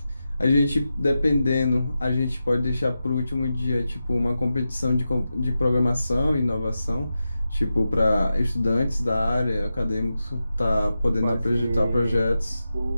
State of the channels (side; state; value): both; inverted; correlation -0.91